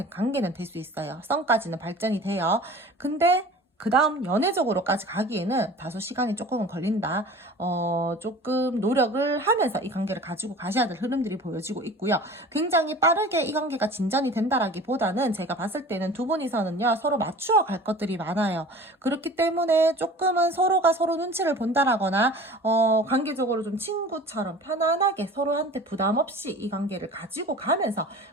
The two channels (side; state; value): both; normal; correlation 0.41